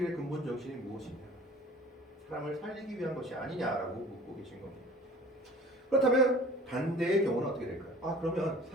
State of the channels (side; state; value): both; normal; correlation 0.45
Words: 근본 정신이 무엇이냐? 사람을 살리기 위한 것이 아니냐라고 묻고 계신 겁니다. 그렇다면 반대의 경우는 어떻게 될까요? 그러면